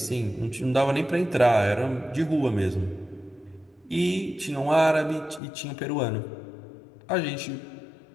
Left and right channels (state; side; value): drops out; right; at 5.4 s